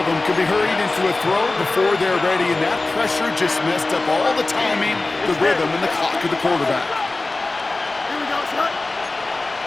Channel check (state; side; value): quieter; right; 3.2 dB